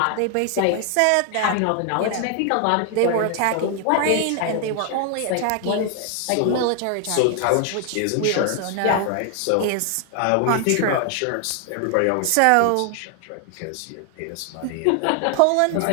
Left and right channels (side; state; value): both; different; correlation 0.00